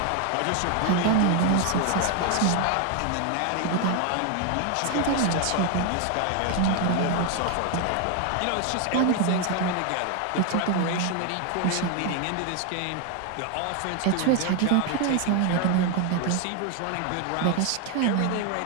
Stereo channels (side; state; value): both; different; correlation 0.01